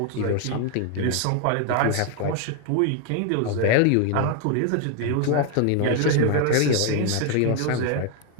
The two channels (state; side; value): different; both; correlation 0.01